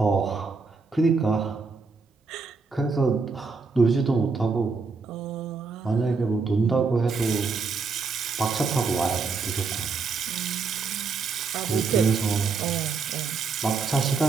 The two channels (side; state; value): left; quieter; 4.7 dB